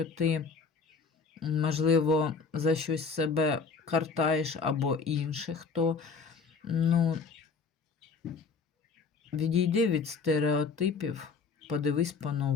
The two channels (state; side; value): quieter; right; 5.0 dB